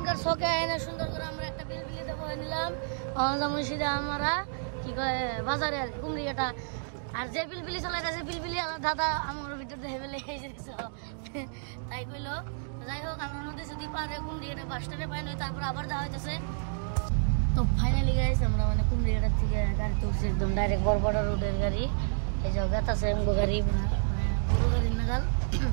শখে আয়না সুন্দর করে আমরা একটা বিলবিলি দেবো নিলাম। যেমন সিধা আমরা কি কয় বাজারে আর কুমড়িয়াটা। আর যে বিলবিলি চালাইতেছে বিলবিলি দাদা আমার ভিতর দেখে ফেলে তাই কইলো। যাই হোক, আমরা নদী যদি পারে কুমড়িয়াটা বাস স্ট্যান্ডে পাই নই, তারপর আবার যাওয়া হইতেছে। তো ফাইনালি গাইস আমরা মানে কুমড়িয়াটার থেকে গাড়ি তুলছি, একদম ডাইরেক্ট বরপাটা রোডের গাড়ি। এই যে গাতাছে গাড়ি, মানে গরু গাড়ির নাগাল,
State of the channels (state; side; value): silent; left; digital silence